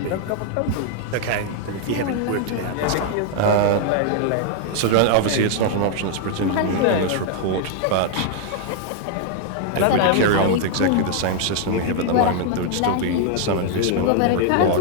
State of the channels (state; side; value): different; both; correlation 0.00